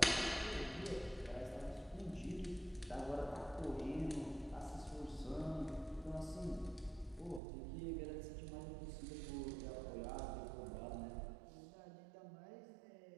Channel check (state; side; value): drops out; left; at 7.4 s